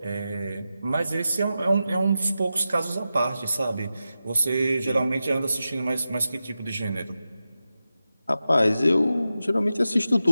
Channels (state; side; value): inverted; both; correlation -0.92